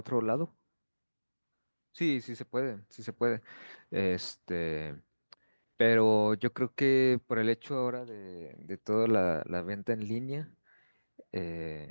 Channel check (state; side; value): inverted; both; correlation -1.00